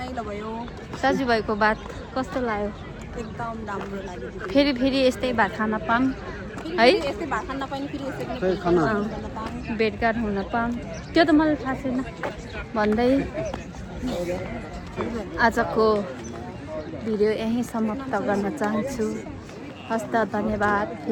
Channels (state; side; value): identical; both; correlation 1.00